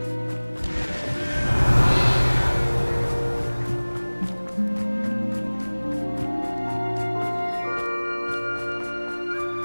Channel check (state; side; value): inverted; both; correlation -1.00